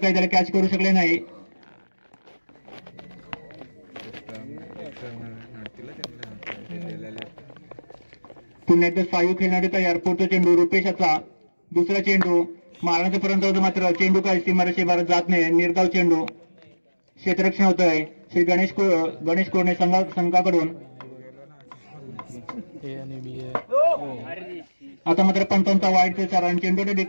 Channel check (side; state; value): both; inverted; correlation -1.00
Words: त्याला कॅच करू शकले नाही। पुन्हा एकदा सायू खेळणारे तयार। पुढचा चेंडू रुपेशचा। दुसरा चेंडू मारण्याचा पर्यंत होतो मात्र चेंडू काही सीमारेषेबाहेर जात नाही। निर्धाव चेंडू क्षेत्ररक्षण होतंय श्री गणेश कोरणे संघाकडून। आता मात्र पंचांचा वाईटचा इशारा आणि चेंडूच्या